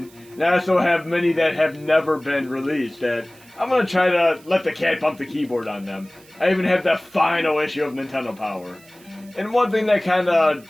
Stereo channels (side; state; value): right; noise; hiss, 26 dB below the sound